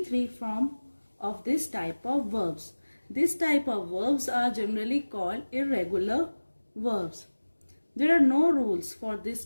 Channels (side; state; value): both; inverted; correlation -1.00